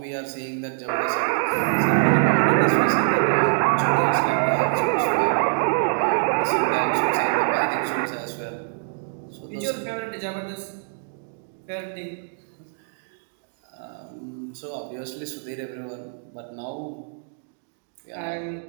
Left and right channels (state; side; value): silent; left; digital silence